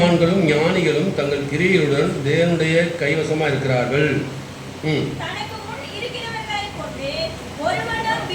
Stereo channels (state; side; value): identical; both; correlation 1.00